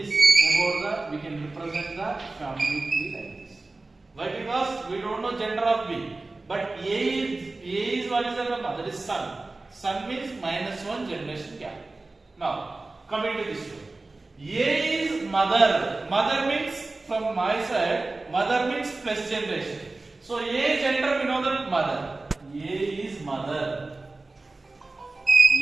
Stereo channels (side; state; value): left; quieter; 3.3 dB